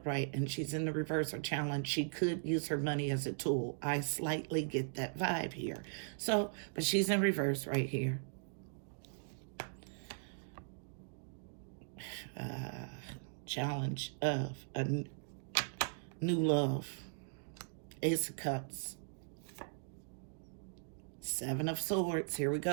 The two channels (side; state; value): left; silent; digital silence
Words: and she's in the reverse or challenge, she could use her money as a tool. I slightly get that vibe here. So, but she's in reverse right here. Challenge of a new love. Ace of Cups. Seven of Swords. Here we